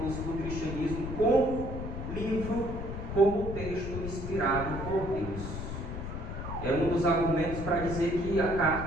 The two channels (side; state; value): left; noise; rumble, 6 dB below the sound